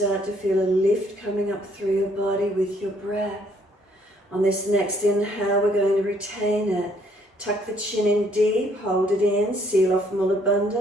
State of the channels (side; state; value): both; normal; correlation 0.66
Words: to feel a lift coming up through your body with your breath? On this next inhale, we're going to retain it. Tuck the chin in deep, hold it in, seal off Mula